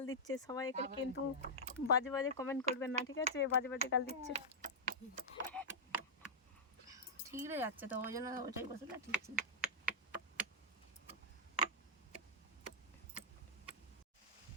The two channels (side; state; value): both; normal; correlation -0.07